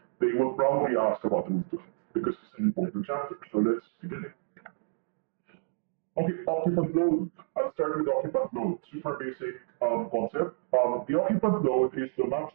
they will probably ask about Rule 12 because it's an important chapter. So let's begin it. Okay, occupant load. I'll start with occupant load. Super basic concept. The occupant load is the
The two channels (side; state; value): left; silent; digital silence